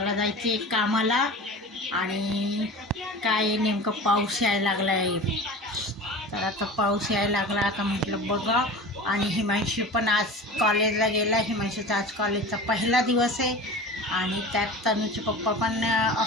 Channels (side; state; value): both; normal; correlation 0.35